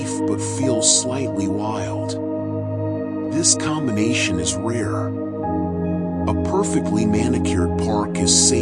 but feel slightly wild. This combination is rare. A perfectly manicured park is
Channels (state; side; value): identical; both; correlation 1.00